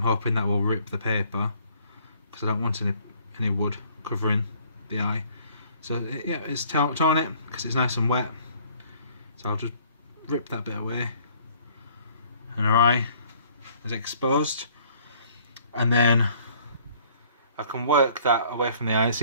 hoping that will rip the paper, because I don't want any wood covering the eye. So yeah, it's torn it because it's nice and wet, so I'll just rip that bit away and our eye is exposed, and then I can work that away from the eye.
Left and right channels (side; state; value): both; inverted; correlation -0.59